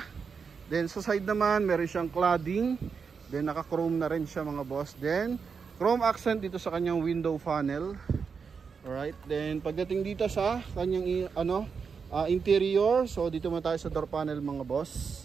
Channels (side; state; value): left; quieter; 5.7 dB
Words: Then sa side naman, meron siyang cladding. Then naka-chrome na rin siya mga boss. Then chrome accent dito sa kanyang window panel. Alright. Then pagdating dito sa kanyang interior, so dito muna tayo sa door panel mga